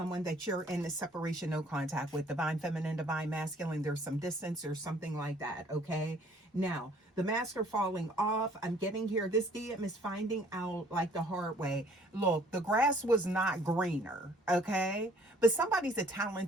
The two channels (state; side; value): normal; both; correlation 0.58